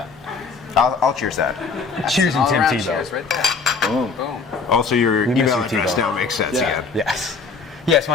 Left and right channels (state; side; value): quieter; right; 4.8 dB